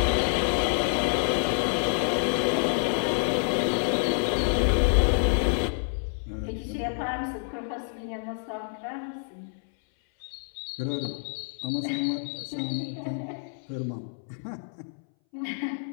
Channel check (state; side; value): silent; right; 60 dB below the other